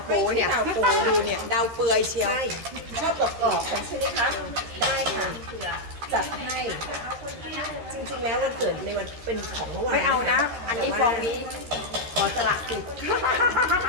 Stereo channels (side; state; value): left; late; 13 ms